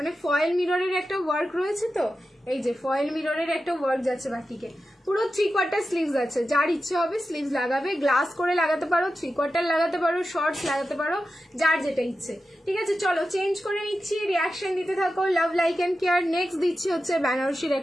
ফয়েল মিররের একটা ওয়ার্ক রয়েছে, তো এই যে ফয়েল মিররের একটা ওয়ার্ক যাচ্ছে বাটিকে, পুরো 3/4 স্লিভস আছে। যার ইচ্ছে হবে স্লিভস লাগাবে, গ্লাস করে লাগাতে পারো, 3/4 লাগাতে পারো, শর্টস লাগাতে পারো, যার যেটা ইচ্ছে। ঠিক আছে, চলো চেঞ্জ করে নিচ্ছি, রিয়াকশন দিতে থাকো। Love like and care. Next দিচ্ছি হচ্ছে বেনারসির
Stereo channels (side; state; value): both; normal; correlation 0.92